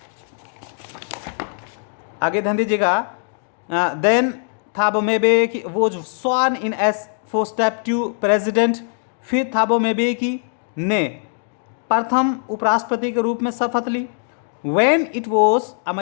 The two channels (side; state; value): right; silent; digital silence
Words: आगे ध्यान दीजिएगा, then Thabo Mbeki was sworn in as first deputy president. फिर थाबो म्बेकी ने प्रथम उपराष्ट्रपति के रूप में शपथ ली। When it was